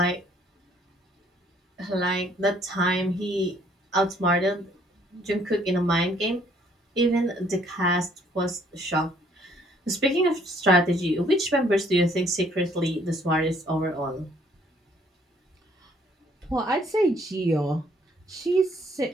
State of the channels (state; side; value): normal; both; correlation 0.63